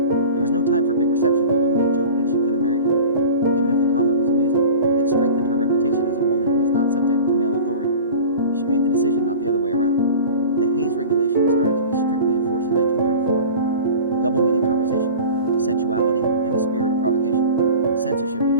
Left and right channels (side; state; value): both; inverted; correlation -0.39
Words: was no time for big reception, although Mae joked that she could have married him. Even if the comment was amusing, it strengthened her reputation as a woman who was not subject to male authority. She made the decision, not the other way around. The Hays Regulation started to be strictly enforced in 1934. Double-meaning conversation, sensuality, and a spirit of provocation. Censorship